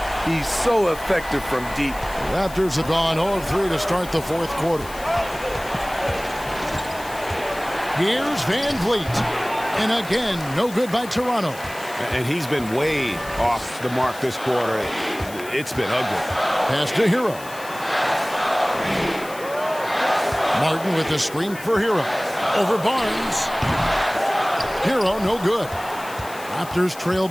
He's so effective from deep. Raptors have gone 0-3 to start the fourth quarter. Here's Van Vliet. And again, no good by Toronto. And he's been way off the mark this quarter. It's been ugly. Pass to Hero. Martin with the screen for Hero. Over Barnes. Hero, no good. Raptors trail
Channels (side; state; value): left; noise; hiss, 17 dB below the sound